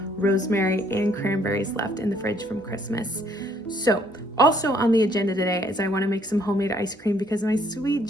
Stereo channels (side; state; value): both; normal; correlation 0.65